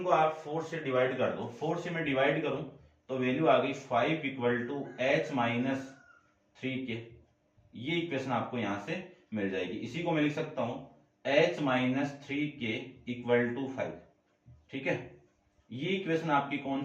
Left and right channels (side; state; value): both; identical; correlation 1.00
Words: को आप 4 से डिवाइड कर दो, 4 से मैं डिवाइड करूं तो वैल्यू आ गई 5 equal to h minus 3k, ये इक्वेशन आपको यहां से मिल जाएगी। इसी को मैं लिख सकता हूं h minus 3k equal to 5। ठीक है, ये इक्वेशन आपकी कौन